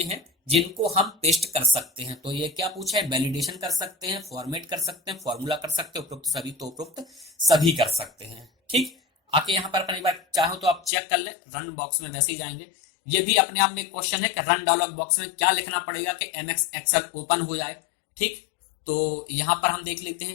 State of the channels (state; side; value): drops out; right; at 10.9 s